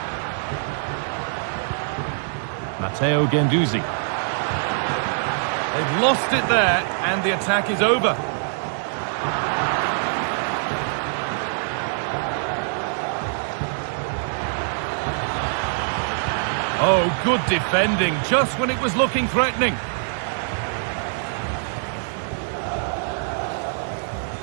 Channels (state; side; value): silent; left; digital silence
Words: Matteo Guendouzi. They've lost it there, and the attack is over. Oh, good defending, just when it was looking threatening.